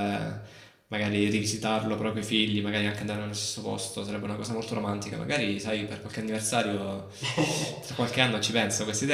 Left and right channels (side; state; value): both; identical; correlation 1.00